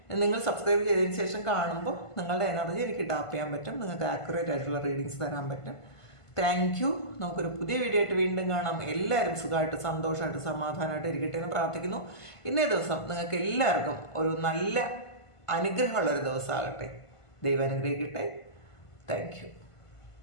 നിങ്ങൾ സബ്സ്ക്രൈബ് ചെയ്തതിന് ശേഷം കാണുമ്പോൾ നിങ്ങളുടെ എനർജി എനിക്ക് ടാപ്പ് ചെയ്യാൻ പറ്റും, നിങ്ങൾക്ക് ആക്യുറേറ്റ് ആയിട്ടുള്ള റീഡിങ്സ് തരാൻ പറ്റും. Thank you. നമുക്കൊരു പുതിയ വീഡിയോ ആയിട്ട് വീണ്ടും കാണാം. എല്ലാവരും സുഖമായിട്ട് സന്തോഷമായിട്ട് സമാധാനമായിട്ട് ഇരിക്കട്ടെ എന്ന് പ്രാർത്ഥിക്കുന്നു. ഇന്നേ ദിവസം നിങ്ങൾക്ക് എല്ലാവർക്കും ഒരു നല്ല അനുഗ്രഹമുള്ളൊരു ദിവസമാകട്ടെ. ദൈവം അനുഗ്രഹിക്കട്ടെ. Thank you.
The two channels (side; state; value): right; late; 1.5 ms